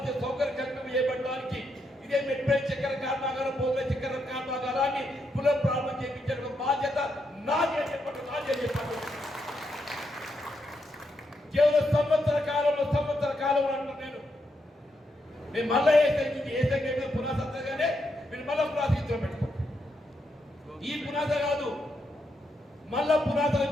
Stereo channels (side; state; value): both; normal; correlation 0.80